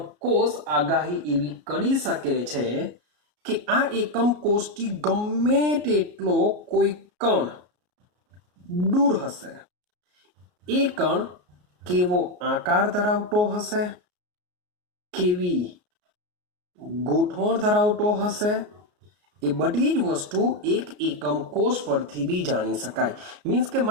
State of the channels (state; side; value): late; left; 33 ms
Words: કોષ આગાહી એવી કરી શકે છે કે આ એકમ કોષથી ગમે તેટલો કોઈ કણ દૂર હશે, એ કણ કેવો આકાર ધરાવતો હશે, કેવી ગોઠવણ ધરાવતો હશે, એ બધી જ વસ્તુ એક એકમ કોષ પરથી બી જાણી શકાય. મીન્સ કે